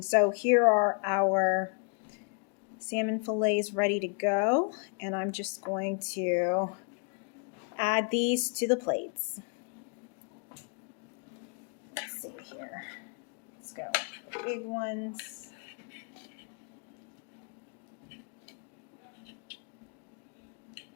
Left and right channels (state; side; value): quieter; right; 39.5 dB